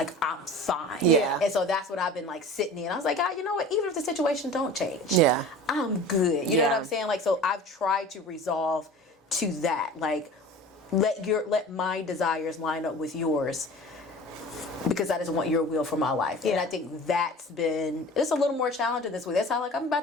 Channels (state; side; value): normal; both; correlation 0.39